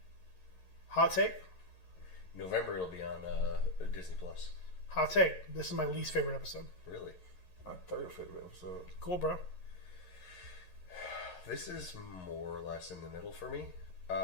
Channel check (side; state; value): right; late; 11 ms